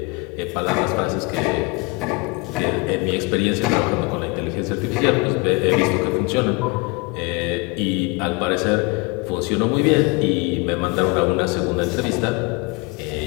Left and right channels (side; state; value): right; quieter; 27.7 dB